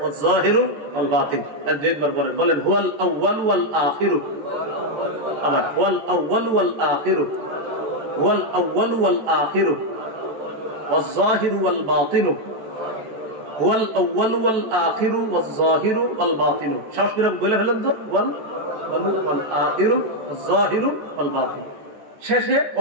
যাহিরু ওয়াল বাতিন। দুইবার বলেন, বলেন হুয়াল আউয়াল ওয়াল আখিরু। আবার ওয়াল আউয়াল ওয়াল আখিরু, ওয়াল আউয়াল ওয়াল আখিরু ওয়াল যাহিরু ওয়াল বাতিনু, ওয়াল আউয়াল ওয়াল আখিরু ওয়াল যাহিরু ওয়াল বাতিনু। সাহস করে বলে ফেলেন তো, ওয়াল ওয়াল আখিরু ওয়াল যাহিরু ওয়াল বাতিন। শেষে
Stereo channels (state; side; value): late; left; 14 ms